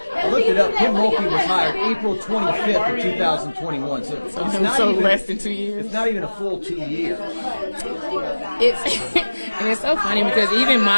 I looked it up. Kim Mulkey was hired April 25th of 2021. So it's not even, less than 2 years. It's not even a full 2 years. And it's so funny because even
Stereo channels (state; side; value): inverted; both; correlation -1.00